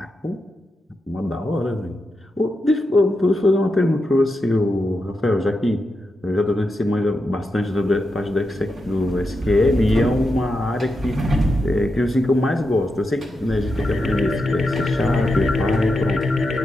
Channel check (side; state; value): both; normal; correlation 0.87